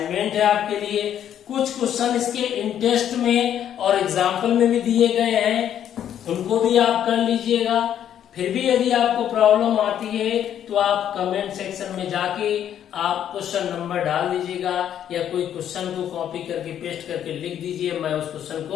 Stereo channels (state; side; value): quieter; right; 10.1 dB